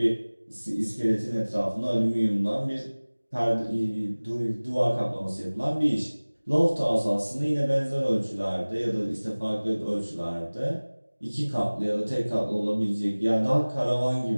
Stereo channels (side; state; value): both; inverted; correlation -1.00